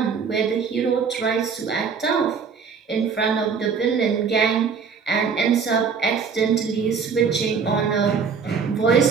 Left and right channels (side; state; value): left; quieter; 5.9 dB